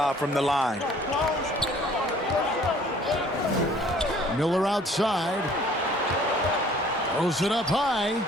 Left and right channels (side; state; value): both; normal; correlation 0.55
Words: from the line. Miller outside. Throws it up high,